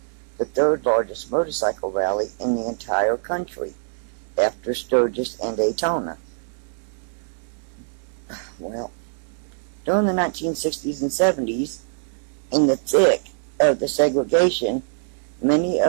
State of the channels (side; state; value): left; silent; digital silence